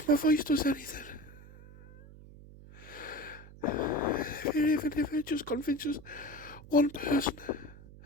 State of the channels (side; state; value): right; noise; hum, 19 dB below the sound